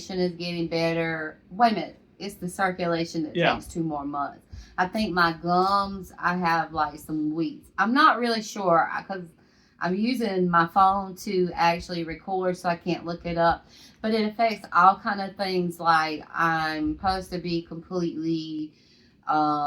is getting better. Wait a minute. It's the circulation that takes 2 more months. I think my gums, I have like some weeks. I'm not really sure because I'm using my phone to actually record, so I can't look it up. But it affects all kind of things. Like, I'm supposed to be completely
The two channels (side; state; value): both; identical; correlation 1.00